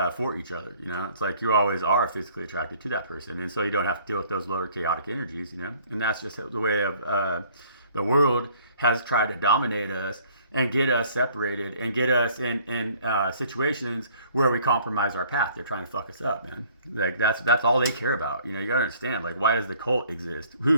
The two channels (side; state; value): both; inverted; correlation -0.57